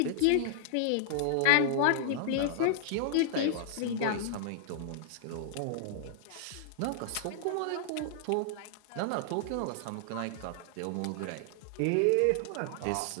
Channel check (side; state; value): both; different; correlation -0.01